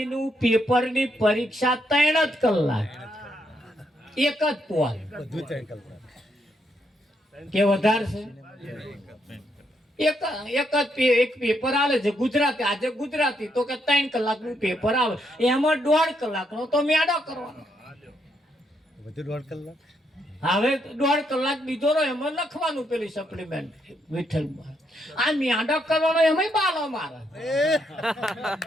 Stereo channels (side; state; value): both; normal; correlation 0.77